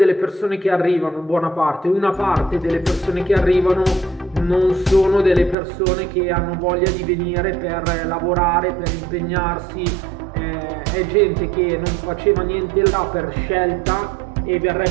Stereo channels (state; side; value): drops out; left; at 5.6 s